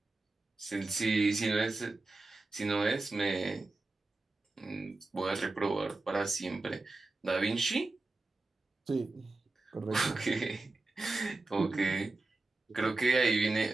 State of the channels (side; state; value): left; quieter; 3.2 dB